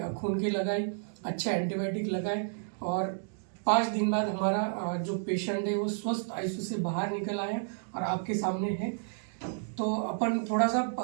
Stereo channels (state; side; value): silent; left; digital silence